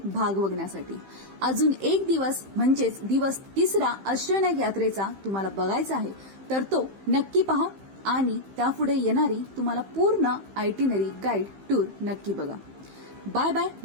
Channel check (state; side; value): late; left; 15 ms